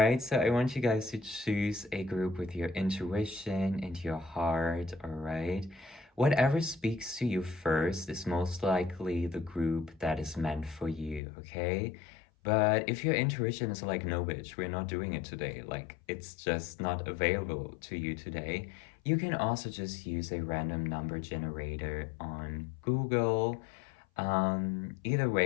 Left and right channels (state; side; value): drops out; right; at 11.2 s